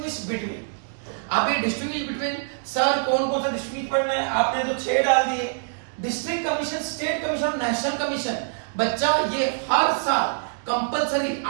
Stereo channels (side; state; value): left; silent; digital silence